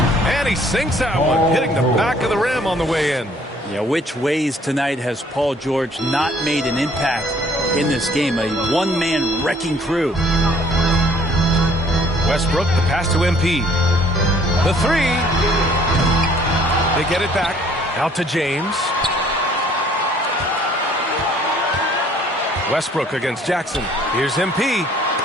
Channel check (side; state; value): both; normal; correlation 0.59